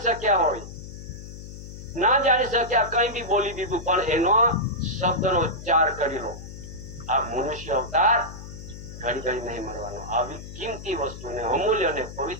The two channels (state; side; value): noise; left; hum, 12 dB below the sound